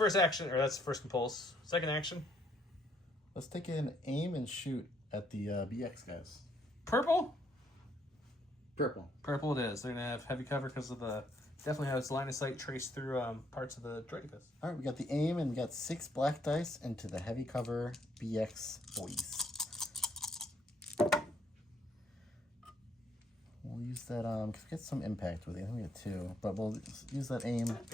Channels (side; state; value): both; normal; correlation 0.70